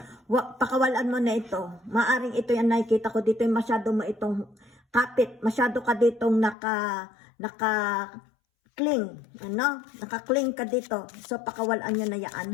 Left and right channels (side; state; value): right; drops out; at 6.6 s